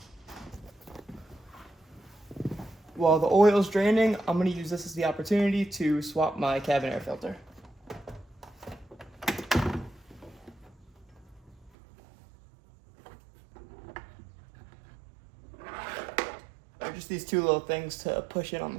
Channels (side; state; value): left; drops out; at 11.7 s